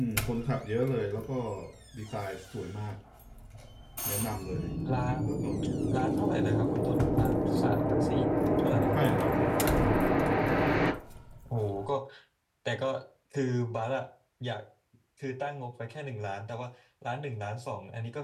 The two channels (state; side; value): identical; both; correlation 1.00